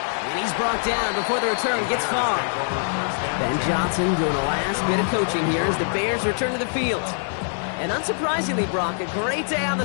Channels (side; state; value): right; silent; 63 dB below the other